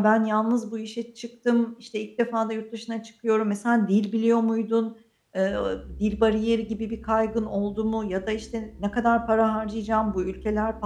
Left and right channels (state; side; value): identical; both; correlation 1.00